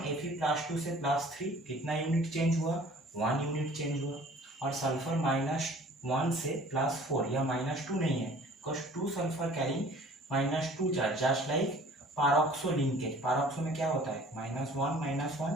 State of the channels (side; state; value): both; normal; correlation 0.50